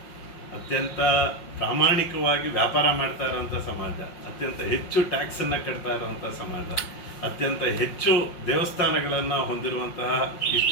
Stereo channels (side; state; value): right; late; 5.6 ms